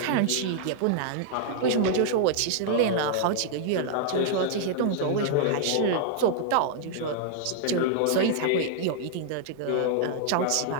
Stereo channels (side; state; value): both; different; correlation -0.01